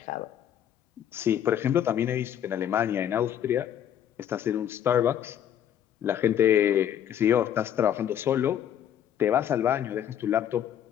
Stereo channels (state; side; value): quieter; right; 10.0 dB